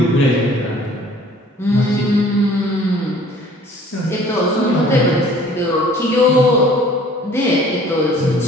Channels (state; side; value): normal; both; correlation 0.52